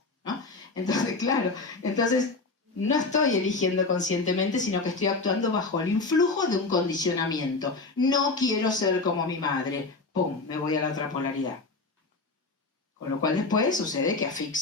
¿no? Entonces, claro. Entonces, no estoy eligiendo conscientemente, sino que estoy actuando bajo el influjo de un condicionamiento. No quiero ser como mi madre. ¡Pum! Me voy a la otra polaridad. Con lo cual después sucede que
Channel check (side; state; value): right; quieter; 3.7 dB